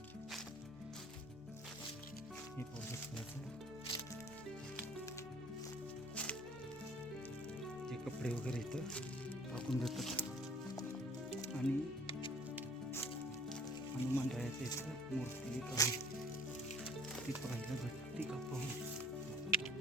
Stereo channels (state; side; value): normal; both; correlation 0.54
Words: हे ते कपडे वगैरे इथं टाकून देतात आणि हनुमान रायाचं इथं मूर्ती एक आहे, ती पाहायला भेटते का पाहू.